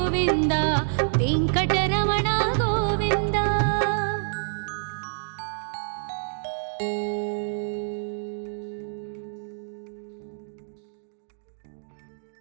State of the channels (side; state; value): left; silent; digital silence